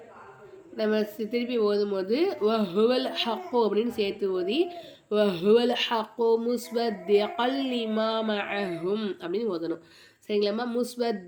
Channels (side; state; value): both; identical; correlation 1.00